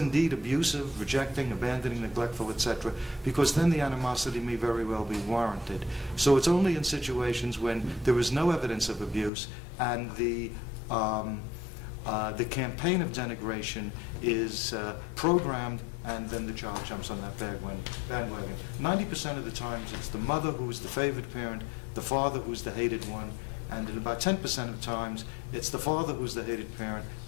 abusive, rejecting, abandoning, neglectful, etc., because then the animosity may very well be warranted. So it's only in situations when there is no evidence of abuse and the campaign of denigration is programmed, and then the child jumps on that bandwagon. 90% of the times it's the mother who's the favored parent, the father who's the hated one, and in about 10% of times, it's the father who's the hated parent,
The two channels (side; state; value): right; drops out; at 9.3 s